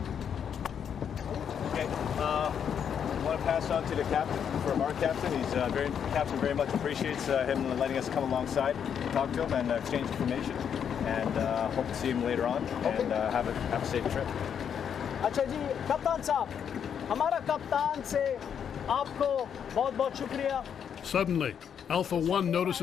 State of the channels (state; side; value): quieter; right; 8.0 dB